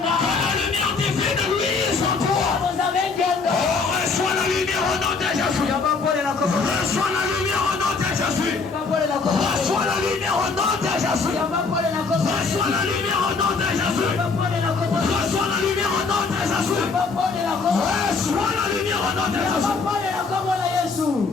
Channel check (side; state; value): right; quieter; 4.5 dB